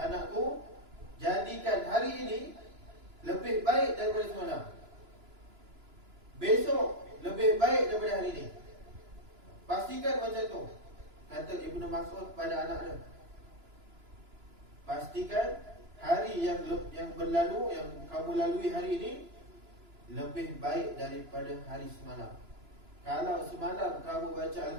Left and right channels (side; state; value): left; late; 2.9 ms